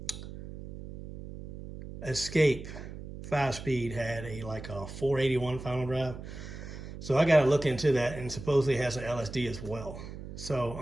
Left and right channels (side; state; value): right; noise; hum, 11 dB below the sound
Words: Escape 5-speed had a 481 final drive. So I got to look into that, and supposedly has an LSD as well. So